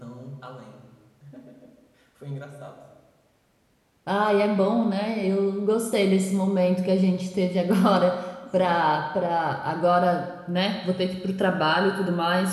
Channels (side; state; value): both; identical; correlation 1.00